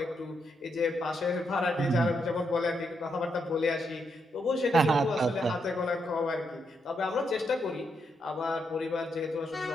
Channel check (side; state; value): both; normal; correlation 0.80